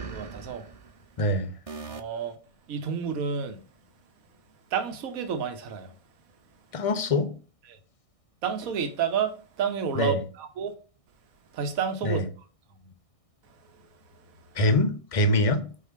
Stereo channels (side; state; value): right; late; 1.6 ms